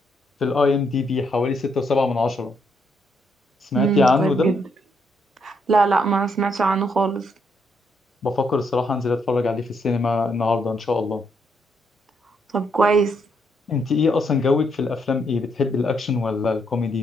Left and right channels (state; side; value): normal; both; correlation 0.75